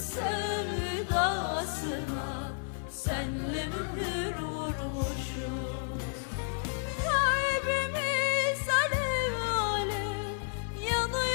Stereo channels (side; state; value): right; silent; 57 dB below the other